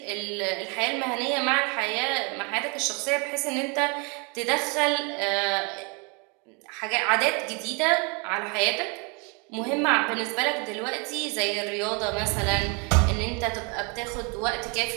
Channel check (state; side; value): quieter; left; 32.6 dB